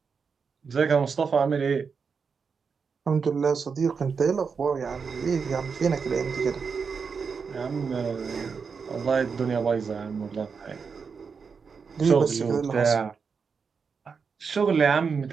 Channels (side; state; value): left; quieter; 5.6 dB